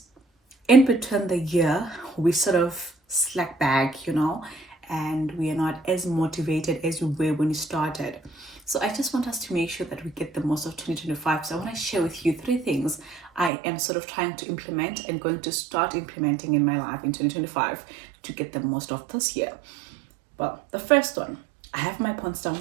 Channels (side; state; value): left; drops out; at 13.5 s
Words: in between the year, we sort of slack back, and we are not as motivated as we were when we started. So I just want us to make sure that we get the most of 2025. So I want to share with you 3 things I am sort of trying to implement and going to start implementing in my life in 2025 to get the most of this year. Well, the first one, I have my points down,